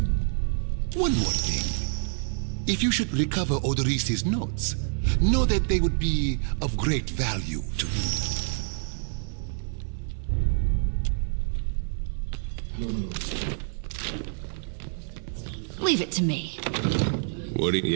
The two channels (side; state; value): left; silent; 57 dB below the other